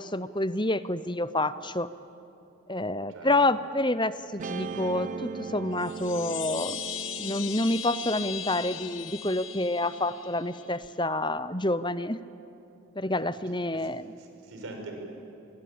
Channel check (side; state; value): both; normal; correlation 0.41